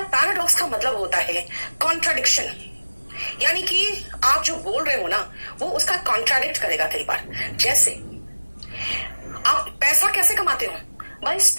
का मतलब होता है कॉन्ट्राडिक्शन, यानी कि आप जो बोल रहे हो ना वो उसका कॉन्ट्राडिक्ट करेगा कई बार। जैसे आप पैसा कैसे कमाते हो? By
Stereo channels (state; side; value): inverted; both; correlation -1.00